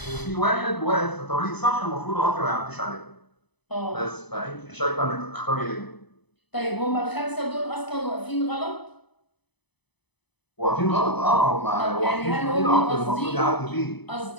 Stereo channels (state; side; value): late; right; 0.99 ms